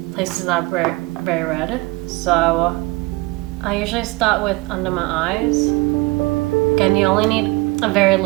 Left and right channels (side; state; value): left; quieter; 23.8 dB